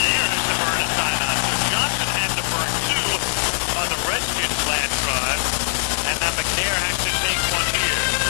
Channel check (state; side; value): silent; right; digital silence